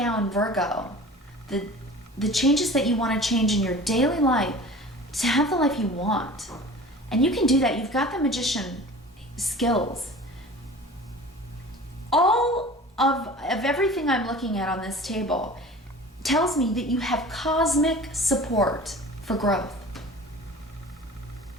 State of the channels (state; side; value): normal; both; correlation 0.41